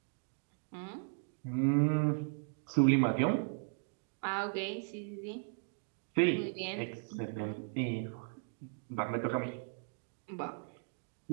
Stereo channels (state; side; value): silent; left; 53 dB below the other